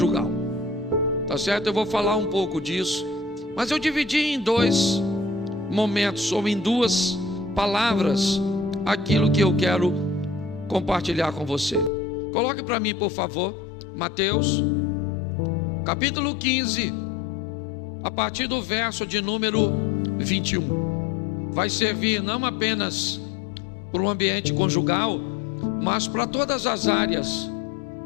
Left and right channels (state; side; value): drops out; right; at 11.9 s